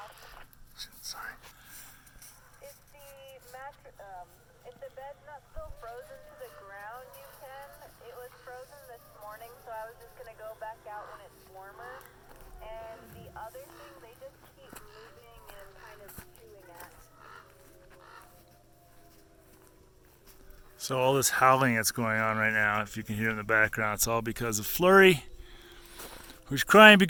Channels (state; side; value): identical; both; correlation 1.00